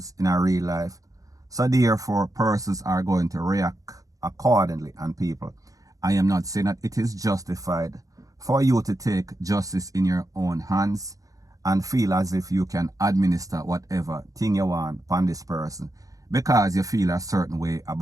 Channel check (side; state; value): left; late; 0.17 ms